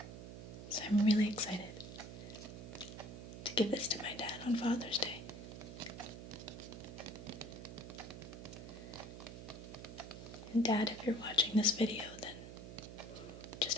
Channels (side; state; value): right; noise; hum, 10 dB below the sound